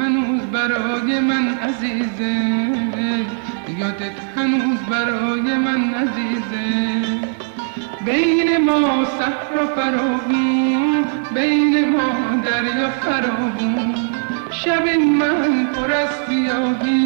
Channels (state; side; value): silent; left; digital silence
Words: برای من عزیزه، یادت هنوز برای من عزیزه. بین ما صحرا فراغون، بین ما دریا فراغون. شب من پر از